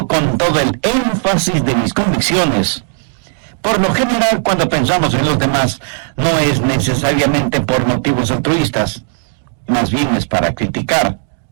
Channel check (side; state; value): left; silent; digital silence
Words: con todo el énfasis de mis convicciones. Por lo general, cuando pensamos en los demás, no es necesariamente por motivos altruistas, más bien es para criticar.